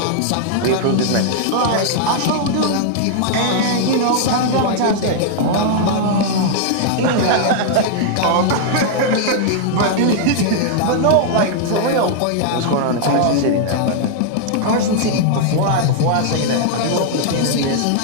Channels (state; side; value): different; both; correlation -0.01